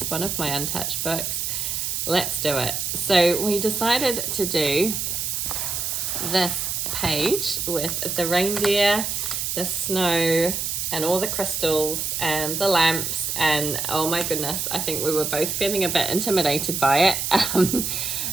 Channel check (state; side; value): noise; right; hiss, 2 dB below the sound